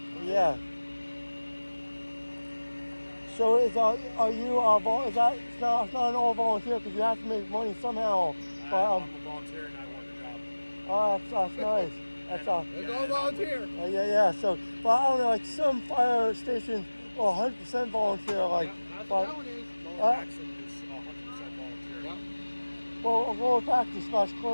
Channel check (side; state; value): both; inverted; correlation -1.00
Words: Yeah. So is you is that it's not an all volunteer because you have to make money somehow. But I'm a volunteer and I want the job. Oh, that's nice. It's all volunteer. Yeah. So, but I don't know, like some fire stations are 100% volunteer. Like, That's but what that one is. Lower Paxton is 100% volunteer. Yep. well, Lower Paxton /